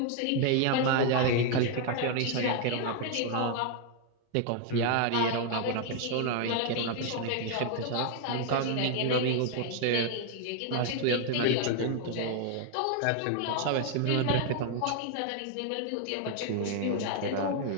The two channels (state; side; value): different; both; correlation 0.00